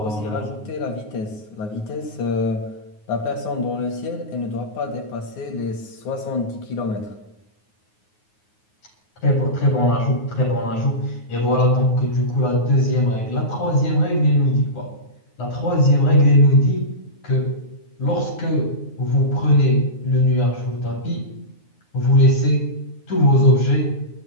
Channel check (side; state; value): right; late; 9.5 ms